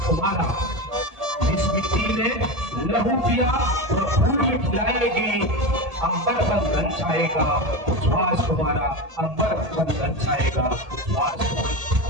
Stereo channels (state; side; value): late; left; 1.8 ms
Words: तुम्हारा। इस मिट्टी में लहू पिया और फूल खिलाएगी, अंबर पर लंचाएगा उच्छ्वास तुम्हारा, अंबर पर लंचाएगा उच्छ्वास तुम्हारा।